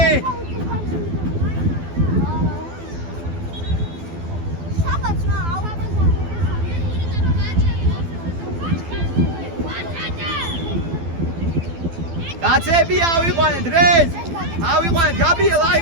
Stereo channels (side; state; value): left; late; 12 ms